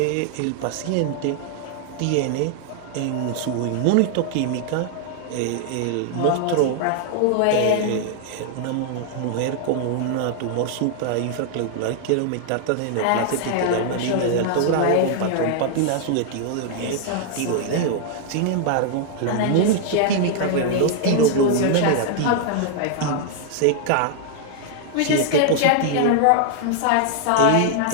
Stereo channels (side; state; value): both; different; correlation 0.00